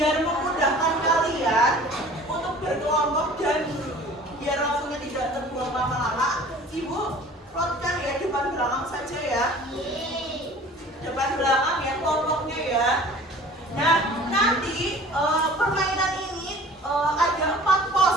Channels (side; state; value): both; normal; correlation 0.47